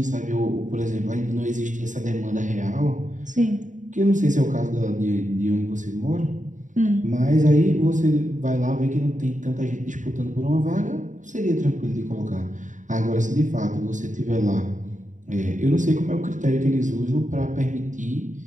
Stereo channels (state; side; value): late; left; 0.36 ms